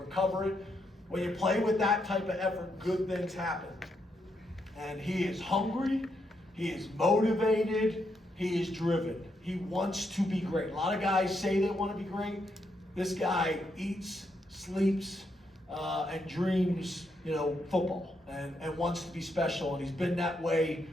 it. When you play with that type of effort, good things happen. And he is hungry, he is motivated, he is driven. He wants to be great. A lot of guys say they want to be great. This guy eats, sleeps, and dreams, football and wants to be special. And he's been that way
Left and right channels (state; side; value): normal; both; correlation 0.79